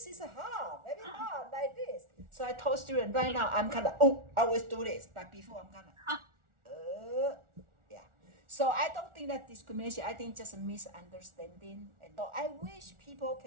is hard, very hard like this. So I told students right now, I'm kind of, I always do this. But before I'm kind of, yeah. So I don't think that discrimination, I think just a misunderstanding. And so I wish people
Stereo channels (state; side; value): late; left; 1.4 ms